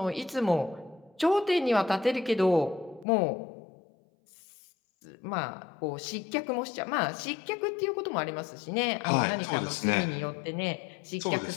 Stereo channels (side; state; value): right; drops out; at 3.1 s